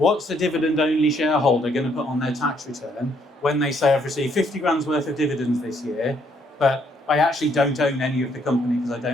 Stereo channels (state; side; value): normal; both; correlation 0.70